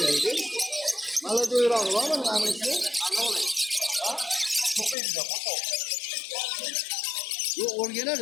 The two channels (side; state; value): right; drops out; at 5.0 s